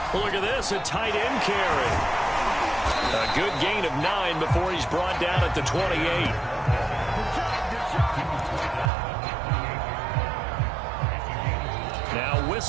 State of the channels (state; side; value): drops out; left; at 8.9 s